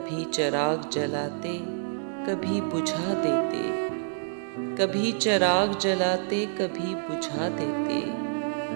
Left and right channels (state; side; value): silent; left; digital silence